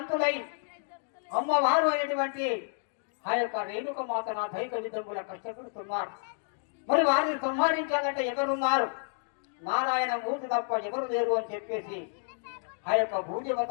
అమ్మవారు అయినటువంటి ఆ యొక్క రేణుక మాత దైక విధముల కష్టపడుతున్నారు. మరి వారిని సంహరించాలంటే ఎవరున్నారు? నారాయణ మూర్తి తప్ప ఎవరు లేరు అని చెప్పేసి ఆ యొక్క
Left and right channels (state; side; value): silent; right; digital silence